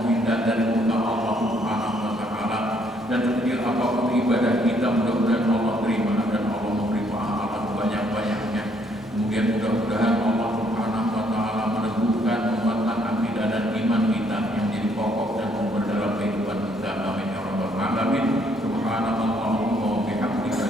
dari murka Allah Subhanahu wa Ta'ala. Dan setiap apapun ibadah kita mudah-mudahan Allah terima dan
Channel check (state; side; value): normal; both; correlation 0.68